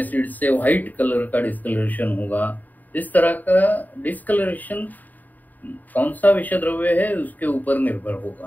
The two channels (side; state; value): right; late; 0.083 ms